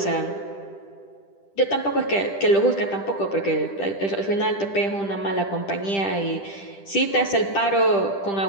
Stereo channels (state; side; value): late; right; 10 ms